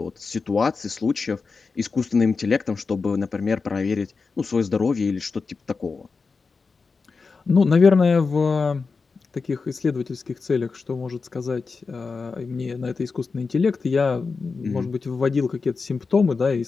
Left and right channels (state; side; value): quieter; right; 4.6 dB